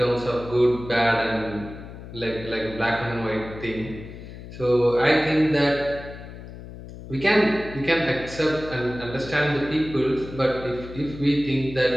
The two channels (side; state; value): left; noise; hum, 13 dB below the sound